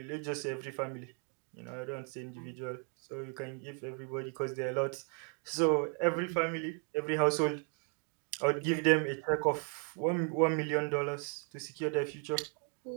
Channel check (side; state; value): left; quieter; 39.4 dB